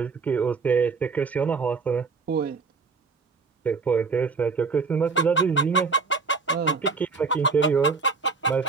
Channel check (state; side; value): quieter; left; 4.7 dB